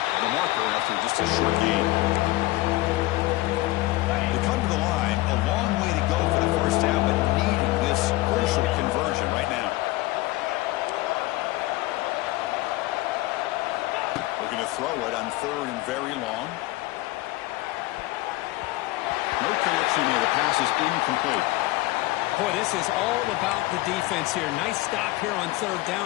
the marker after just a short gain. They come to the line. A long way to go for the 1st down, but needing this crucial conversion right now. Looking to throw it on 3rd and very long. No connection there. The pass is incomplete. Boy, this is all about the defense here. Nice stop here on 3rd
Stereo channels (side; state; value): right; quieter; 19.2 dB